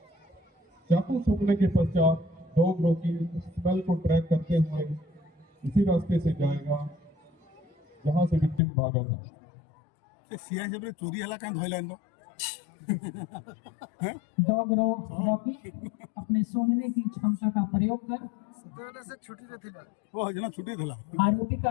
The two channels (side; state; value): right; drops out; at 8.6 s